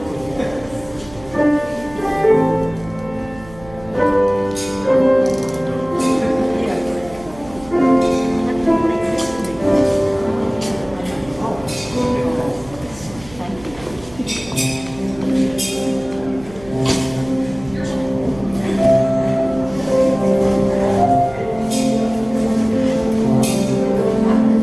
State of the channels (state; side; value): noise; right; hum, 20 dB below the sound